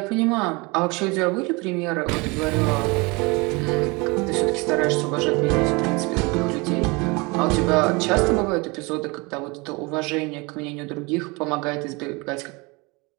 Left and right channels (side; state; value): left; quieter; 26.8 dB